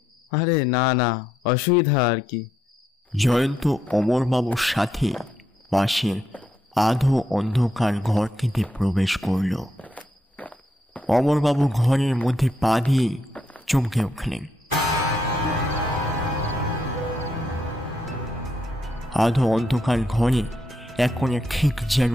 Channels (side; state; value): both; normal; correlation 0.78